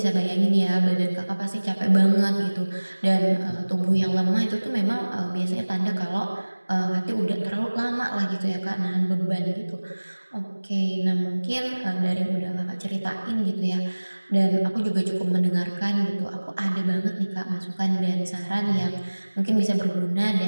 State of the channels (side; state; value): both; inverted; correlation -1.00